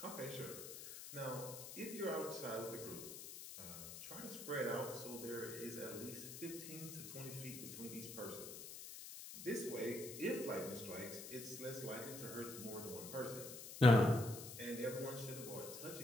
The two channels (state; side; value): noise; left; hiss, 10 dB below the sound